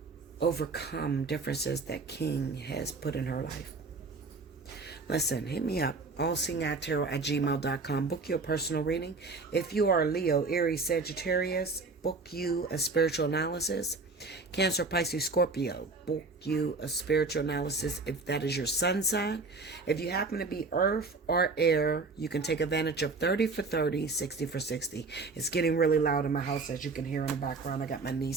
overcome differences that King has put in her life. Listen, hit me up, allseeingeyetarot@gmail.com. Book your personal reading. If you are Leo, Aries, Sagittarius, book you a spiritual analysis. Cancer, Pisces, Scorpio, book you a spiritual analysis if that is your sun sign. If you happen to be earth or air, you can take advantage of 30 for 30, 60 for 60. It's getting really loud in my house, as you can hear in the background. I got my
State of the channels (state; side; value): quieter; left; 3.9 dB